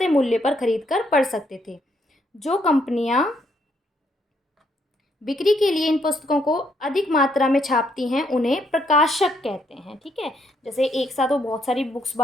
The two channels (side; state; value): both; normal; correlation 0.73